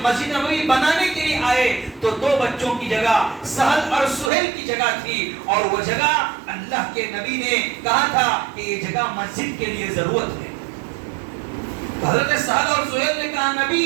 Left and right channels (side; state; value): left; drops out; at 4.3 s